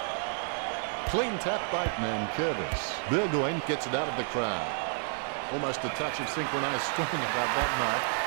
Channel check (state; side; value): silent; left; 58 dB below the other